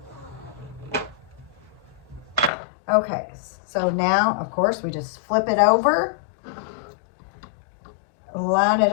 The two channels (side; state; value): right; drops out; at 2.5 s